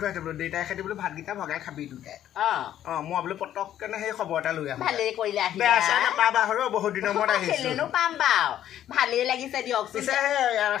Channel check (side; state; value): right; quieter; 11.4 dB